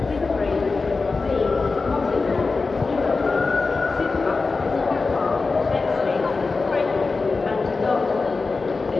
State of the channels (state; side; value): quieter; right; 4.1 dB